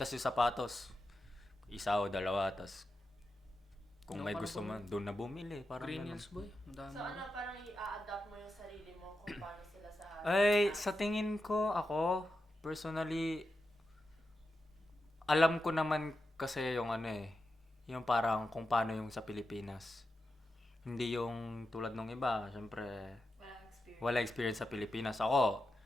Tapos yung sapatos, isa o dalawa, tapos Kung Doon may ka na gusto man, doon na bumili. Parang Green ganun. Hills boy. Ang dami. So ano, parang i-adapt mo yung sarili mo kung paano sila sa Ay, sa tingin ko, ako, personally, alam ko naman kasi yung ano eh, yung parang kung paano yung sa Pilipinas. Hindi yung tulad nung iba, syempre, wala experience sa Pilipinas. Ako,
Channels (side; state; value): both; normal; correlation 0.89